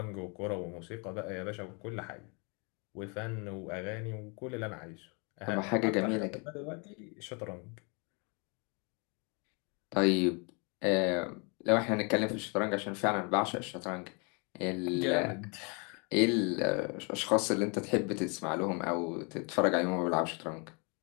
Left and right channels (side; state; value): right; quieter; 33.6 dB